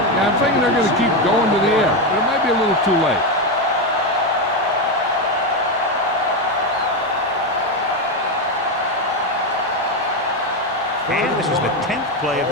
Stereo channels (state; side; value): normal; both; correlation 0.10